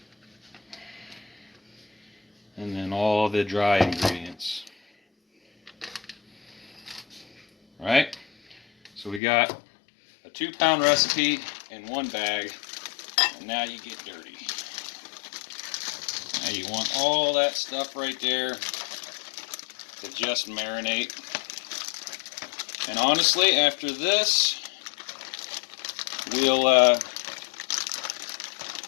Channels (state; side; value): drops out; right; at 9.2 s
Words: and then all the dry ingredients. Right? So we got a 2 pound recipe in one bag, and now you get dirty. Now you want all that stuff right there to just marinate. And honestly, after this, we'll